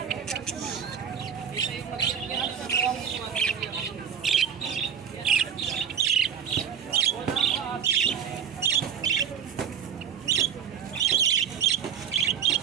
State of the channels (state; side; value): quieter; left; 8.0 dB